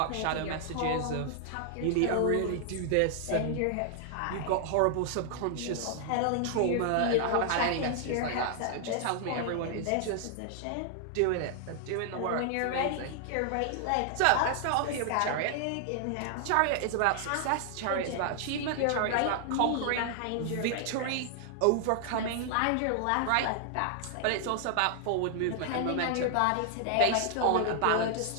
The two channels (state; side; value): different; both; correlation 0.00